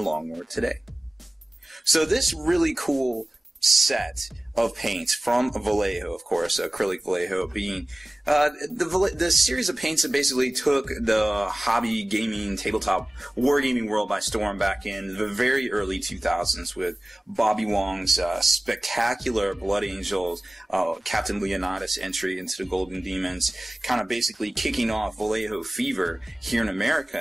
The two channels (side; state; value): both; normal; correlation 0.97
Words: Long War today. So this really cool set of paints from Vallejo, of course, acrylic Vallejo being the series of paints that basically took the hobby gaming, tabletop wargaming world by storm back in the very early 2000s with Bobby Wong's spectacular Blood Angels, Captain Leonidas entry into the Golden Demons, kind of basically kicking off Vallejo fever here in America